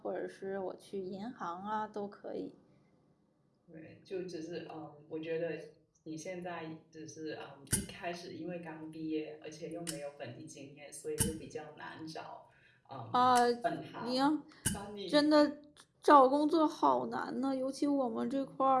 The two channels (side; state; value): both; identical; correlation 1.00